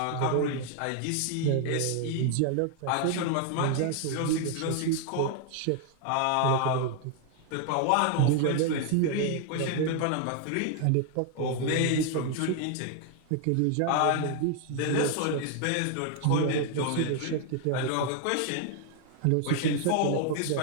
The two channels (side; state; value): both; different; correlation 0.00